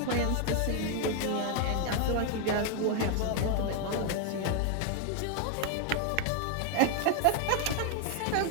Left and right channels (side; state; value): both; different; correlation 0.00